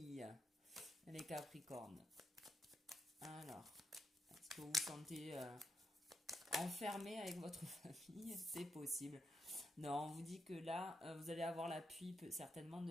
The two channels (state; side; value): normal; both; correlation 0.82